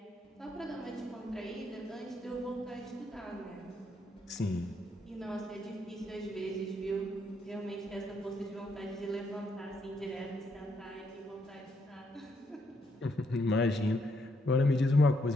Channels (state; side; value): normal; both; correlation 0.75